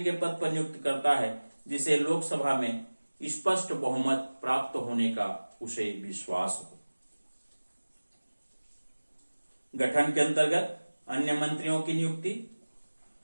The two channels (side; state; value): both; inverted; correlation -1.00